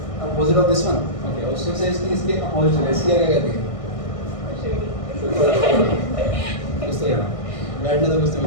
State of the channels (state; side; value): late; right; 1.6 ms